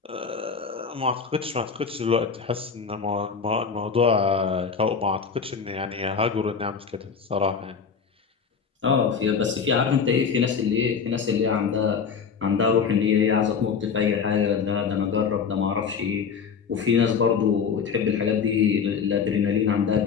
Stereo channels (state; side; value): quieter; right; 6.2 dB